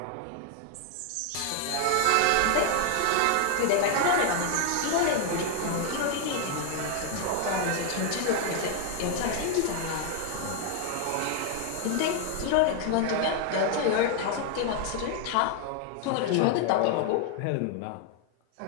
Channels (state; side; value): different; both; correlation 0.00